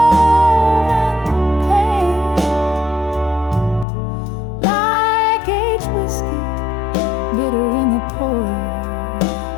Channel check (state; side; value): drops out; right; at 3.9 s